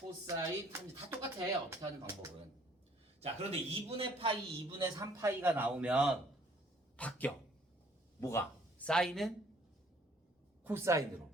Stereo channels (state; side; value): normal; both; correlation 0.60